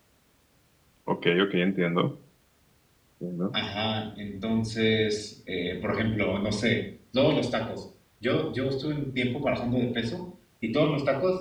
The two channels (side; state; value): both; identical; correlation 1.00